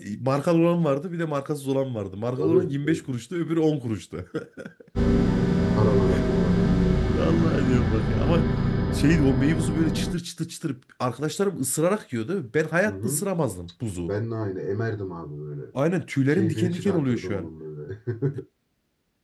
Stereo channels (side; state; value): both; identical; correlation 1.00